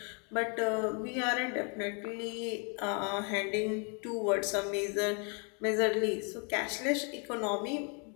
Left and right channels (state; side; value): quieter; right; 36.8 dB